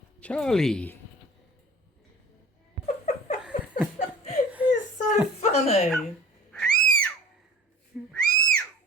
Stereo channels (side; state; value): both; normal; correlation 0.43